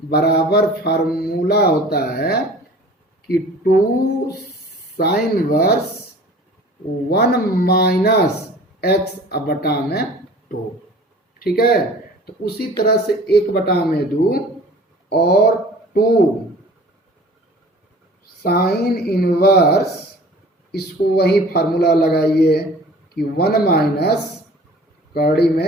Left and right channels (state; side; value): normal; both; correlation 0.45